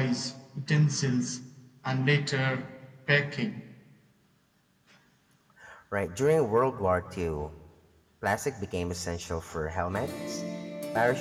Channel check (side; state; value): both; identical; correlation 1.00